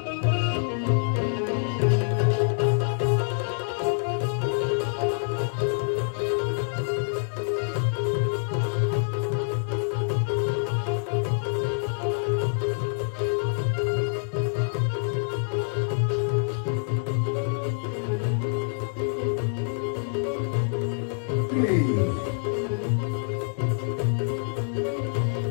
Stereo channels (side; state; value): right; silent; digital silence